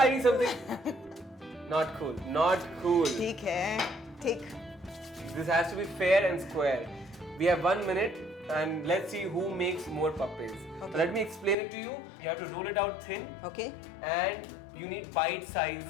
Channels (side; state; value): right; drops out; at 11.6 s